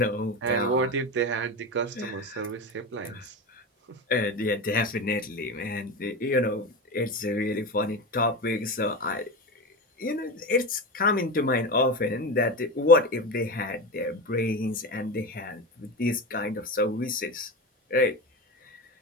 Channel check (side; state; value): both; normal; correlation 0.22